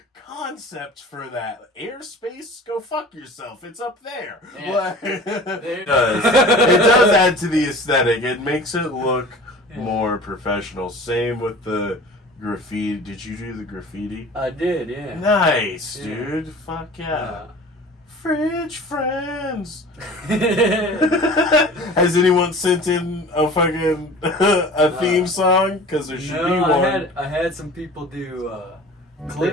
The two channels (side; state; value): both; normal; correlation 0.41